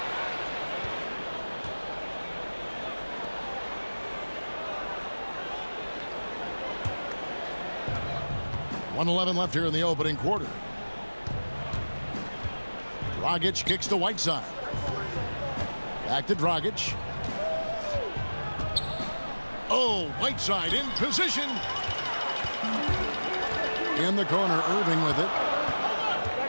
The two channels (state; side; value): inverted; both; correlation -1.00